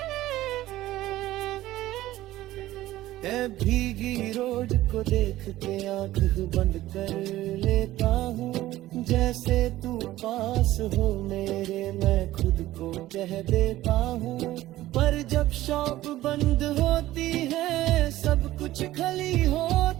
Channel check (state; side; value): quieter; left; 15.6 dB